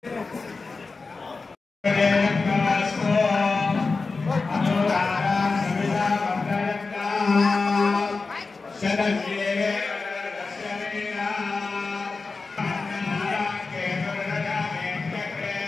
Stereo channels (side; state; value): right; quieter; 4.1 dB